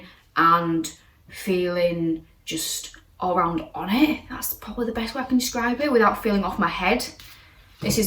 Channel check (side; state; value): both; identical; correlation 1.00